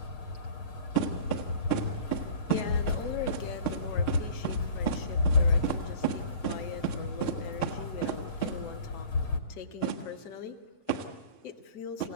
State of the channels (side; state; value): right; late; 6.5 ms